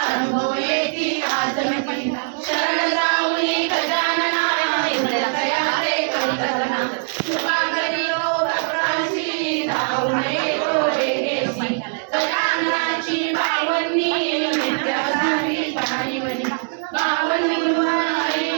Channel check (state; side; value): silent; left; digital silence